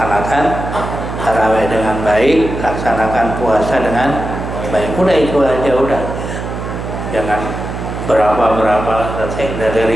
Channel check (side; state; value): right; noise; hum, 6 dB below the sound